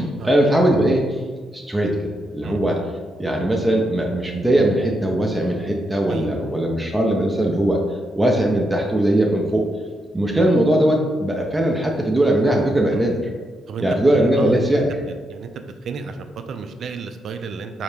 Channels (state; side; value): normal; both; correlation 0.83